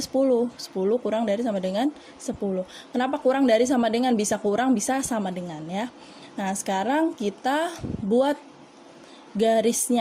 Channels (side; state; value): both; identical; correlation 1.00